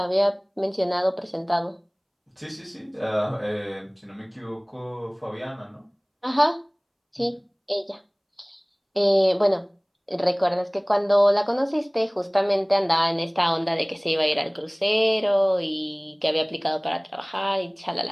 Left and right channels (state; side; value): identical; both; correlation 1.00